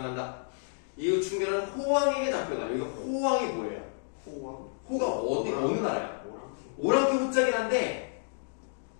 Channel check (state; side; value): silent; right; digital silence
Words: 이후 충렬은 호왕에게 잡혀가요. 여기 호왕이 뭐예요? 호왕? 호가 어느 나라야? 오랑캐. 오랑캐 호자긴 한데